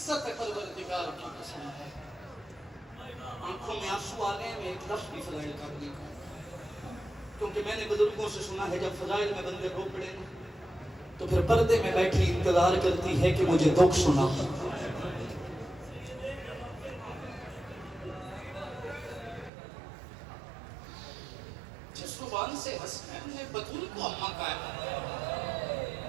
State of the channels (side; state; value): left; drops out; at 19.5 s